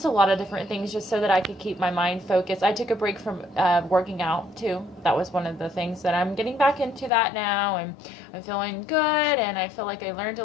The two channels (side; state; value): right; drops out; at 7.1 s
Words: a lot of different things, just so that I could keep my mind focused. I took a break from working out too. That was one of the things that I'm getting back into that now, and I'm feeling good, and I feel like I learned